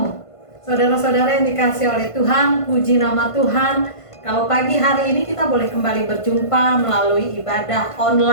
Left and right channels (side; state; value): right; late; 1.5 ms